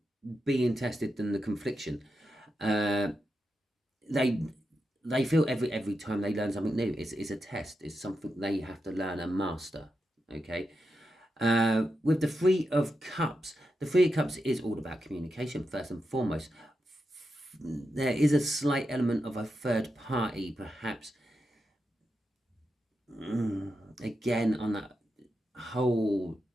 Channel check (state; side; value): normal; both; correlation 0.87